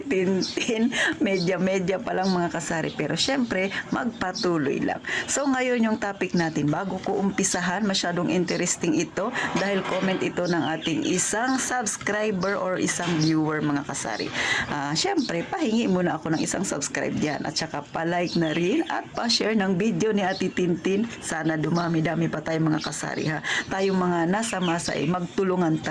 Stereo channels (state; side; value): identical; both; correlation 1.00